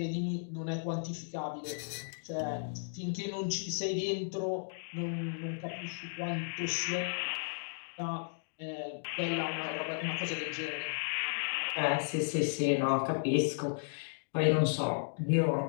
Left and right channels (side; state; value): right; silent; digital silence